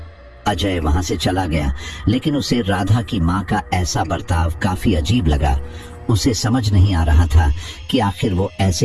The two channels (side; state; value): both; identical; correlation 1.00